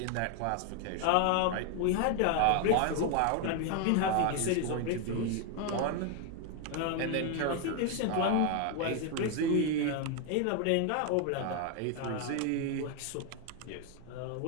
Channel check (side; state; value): both; different; correlation 0.01